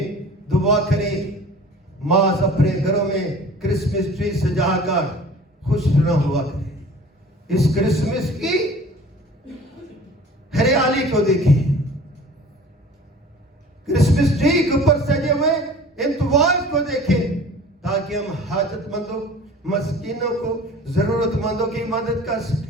दुआ करें, माँ अपने घरों में क्रिसमस ट्री सजाकर खुश न हुआ करें। इस क्रिसमस की हरियाली को देखें, क्रिसमस ट्री के ऊपर सजे हुए इंतवाज को देखें, ताकि हम हाजतमंदों, मस्कीनों को, जरूरतमंदों की मदद कर सकें।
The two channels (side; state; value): both; normal; correlation 0.45